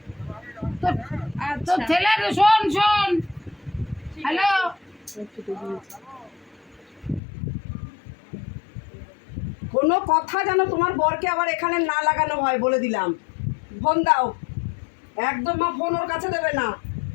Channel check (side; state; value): right; drops out; at 7.2 s